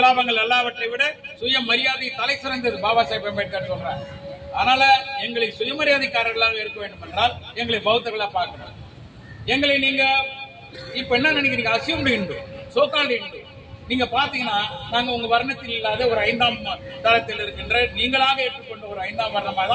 எல்லாவற்றை விட சுயமரியாதை தலை சிறந்தது, பாபா சாஹிப் அம்பேத்கர் சொல்றார். அதனால எங்களை சுயமரியாதைக்காரர்களாக இருக்க வேண்டும் என்றால் எங்களை பௌத்தர்களா பார்க்கணும். எங்களை நீங்க இப்ப என்ன நினைக்கிறீங்க? Assumed Hindu, so called Hindu. நீங்க பாத்தீங்கன்னா நாங்க உங்க வர்ணத்தில் இல்லாத ஒரு 5ஆம் தரத்தில் இருக்கின்ற நீங்களாக ஏற்றுக்கொண்ட ஒரு 5ஆம் வர்ணமா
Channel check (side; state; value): both; identical; correlation 1.00